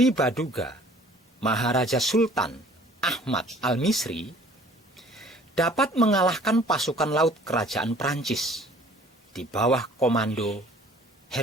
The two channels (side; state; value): both; normal; correlation 0.52